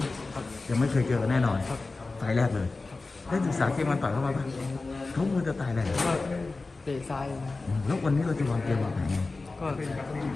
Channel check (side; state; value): right; quieter; 3.6 dB